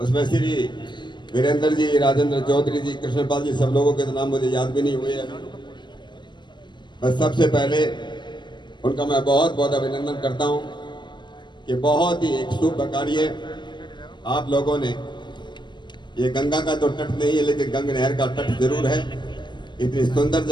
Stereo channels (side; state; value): right; late; 0.22 ms